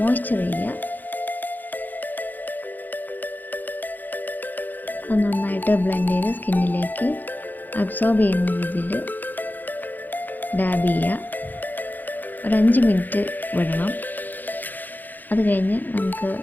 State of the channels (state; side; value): late; right; 0.086 ms